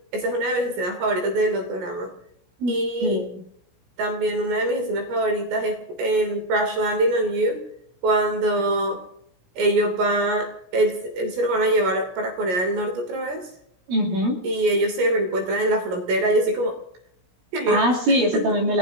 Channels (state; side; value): late; left; 17 ms